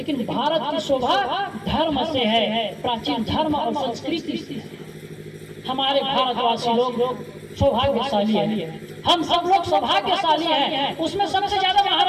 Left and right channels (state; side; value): identical; both; correlation 1.00